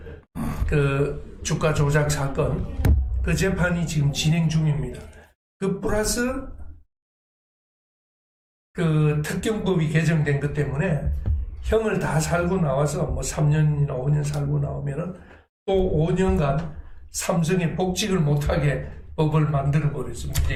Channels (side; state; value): both; identical; correlation 1.00